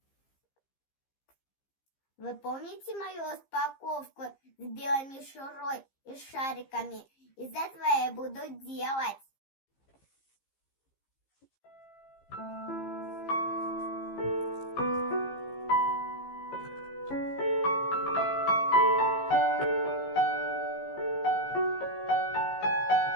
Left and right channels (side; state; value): right; late; 15 ms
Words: Вы помните мою распаковку с белой мишурой и шариками? Из этого я буду делать.